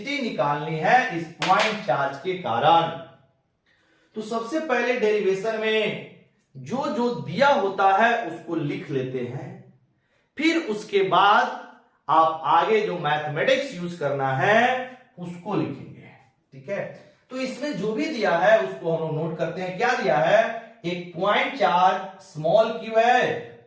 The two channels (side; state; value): both; identical; correlation 1.00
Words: निकालनी है इस पॉइंट चार्ज के कारण। तो सबसे पहले डेरिवेशन में जो जो दिया होता है उसको लिख लेते हैं, फिर उसके बाद आप आगे जो मैथमेटिक्स यूज करना है उसको लिखेंगे। ठीक है? तो इसमें जो भी दिया है उसको हम लोग नोट करते हैं। क्या दिया है? एक पॉइंट चार्ज स्मॉल q है